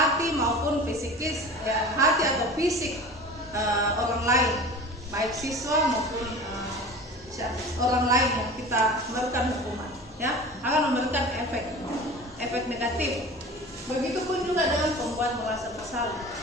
maupun fisikis, hati atau fisik orang lain, baik siswa maupun orang lain yang kita memberikan hukuman, ya, akan memberikan efek negatif. Begitupun juga dengan pembuat merasa bersalah.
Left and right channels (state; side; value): normal; both; correlation 0.37